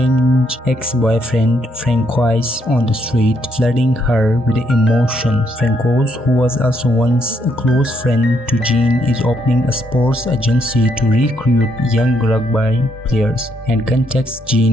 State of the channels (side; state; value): both; normal; correlation 0.74